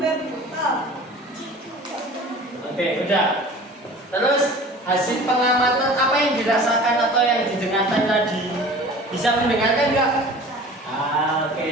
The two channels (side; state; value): both; normal; correlation 0.42